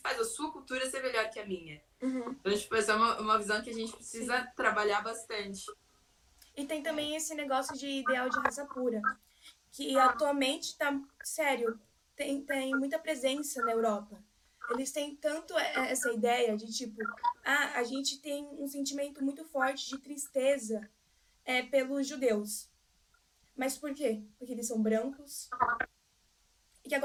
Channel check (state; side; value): identical; both; correlation 1.00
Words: a sua cultura ser melhor que a minha? Uhum. Então, tipo, essa é uma visão que a gente precisa Sim. trabalhar bastante. E tem também esse negócio de ideal de raça pura, que atualmente está sério, tem muita presença na Europa. Eles têm tanto essa ideia de tipo, a gente tem um sentimento muito forte de tristeza pelos judeus. Mas por quê? Porque eles são brancos e que